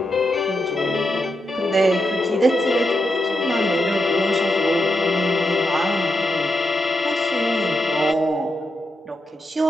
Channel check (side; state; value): both; normal; correlation 0.85